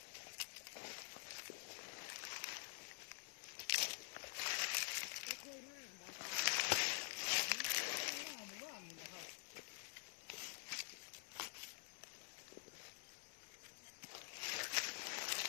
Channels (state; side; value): silent; right; digital silence